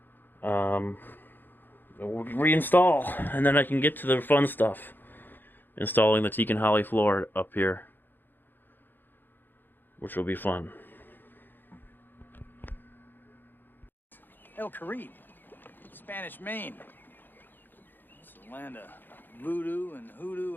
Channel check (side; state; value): right; late; 0.092 ms